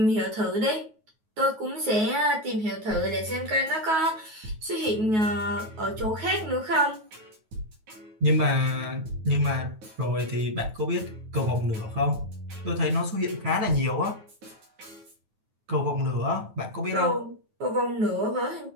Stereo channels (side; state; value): left; late; 9.3 ms